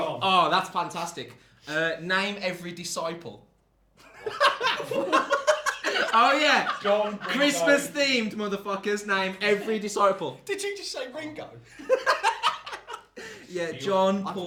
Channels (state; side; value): identical; both; correlation 1.00